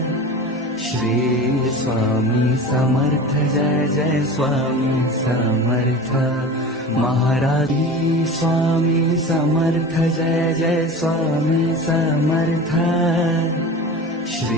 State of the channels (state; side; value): normal; both; correlation 0.33